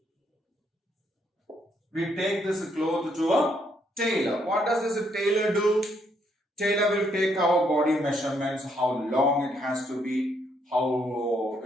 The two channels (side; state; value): both; normal; correlation 0.73